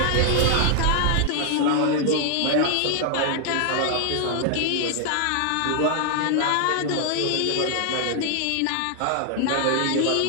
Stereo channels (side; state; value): both; different; correlation 0.00